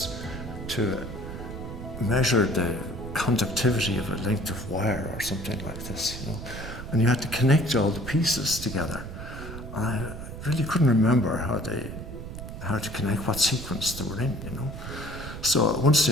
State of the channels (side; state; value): right; noise; rumble, 9 dB below the sound